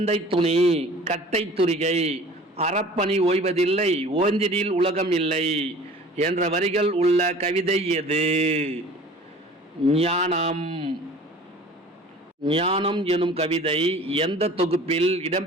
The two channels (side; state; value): both; normal; correlation 0.45